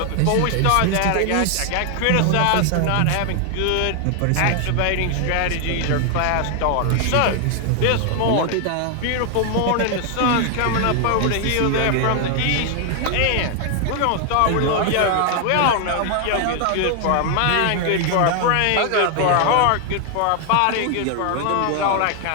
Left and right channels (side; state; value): both; different; correlation 0.00